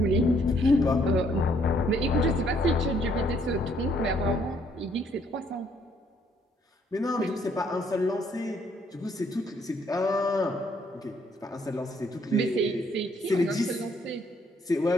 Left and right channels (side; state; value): both; normal; correlation 0.68